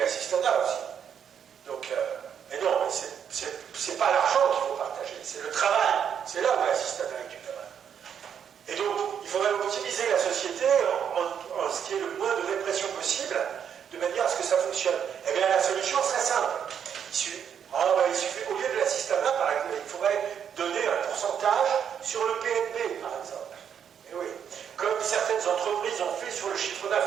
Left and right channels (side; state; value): left; quieter; 8.2 dB